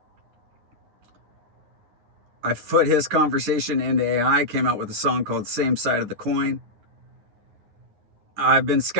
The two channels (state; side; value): late; left; 10 ms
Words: I put his conversation into AI, came out with a song called Same Side of the Coin. I've been